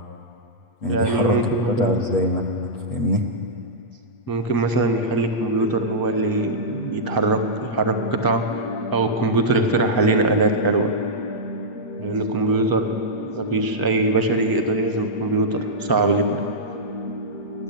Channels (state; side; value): late; right; 8.2 ms